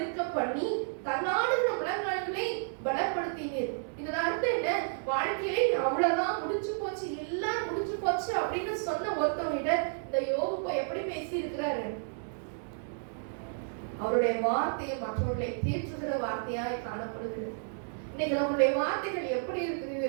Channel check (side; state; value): left; silent; digital silence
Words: பண்ணி தன்னாடுகிற முழங்கால்களை பலப்படுத்தினீர். இதோட அர்த்தம் என்ன? வாழ்க்கையிலே அவ்வளவுதான், முடிச்சு போச்சு, எல்லாம் முடிச்சு போச்சு அப்படின்னு சொன்ன ஒருத்தவங்க இந்த இந்த யோபு போய் எப்படி பேசி இருக்கிறாரு? அவருடைய வார்த்தையை மற்றவர்களை தேற்றுகிற வார்த்தையாய் காணப்படுகிறது. இன்னைக்கு நம்மளுடைய வார்த்தைகள் எப்படி இருக்குது?